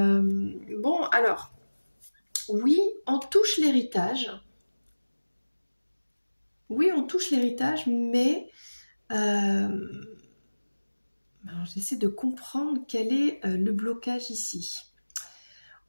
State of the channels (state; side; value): inverted; both; correlation -1.00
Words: alors, oui, on touche l'héritage. Oui, on touche l'héritage, mais j'essaie de comprendre quel est le blocage ici.